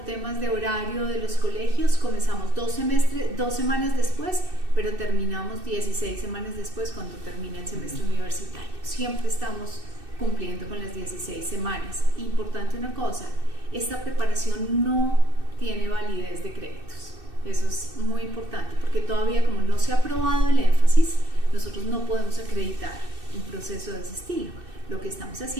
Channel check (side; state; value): left; late; 2.6 ms